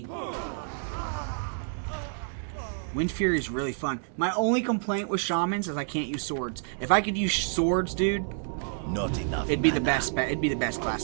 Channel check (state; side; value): silent; left; digital silence